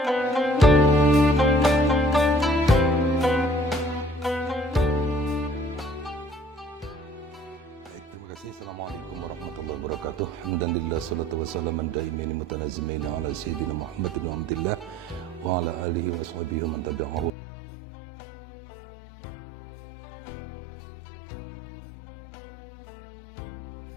kasih. Assalamualaikum warahmatullahi wabarakatuh. Alhamdulillah, salatu wassalamu daimin mutanazimin ala sayyidina Muhammad bin Abdillah wa ala alihi wa sahbihi man tabi'ahu wa la haula wa la quwwata illa billah. Amma ba'd. Berbicara soal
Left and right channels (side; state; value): right; drops out; at 17.3 s